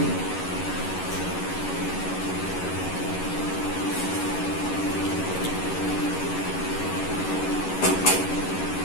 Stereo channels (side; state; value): right; late; 11 ms